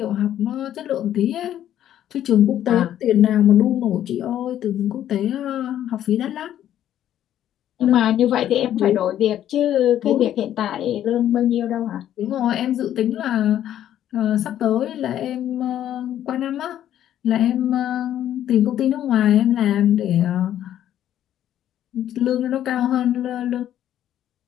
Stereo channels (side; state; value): right; quieter; 11.3 dB